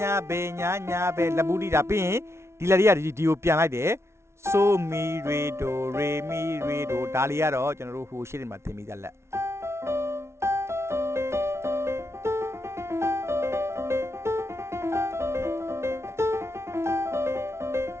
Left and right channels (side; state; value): left; late; 0.13 ms